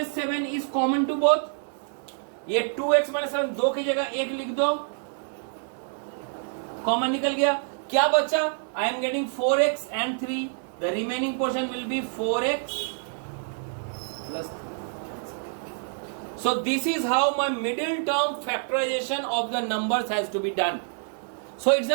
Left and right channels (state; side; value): silent; left; 60 dB below the other